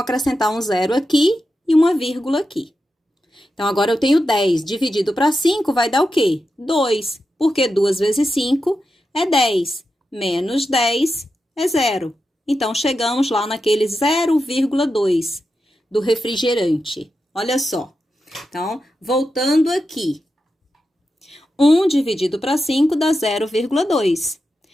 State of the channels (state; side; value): normal; both; correlation 0.89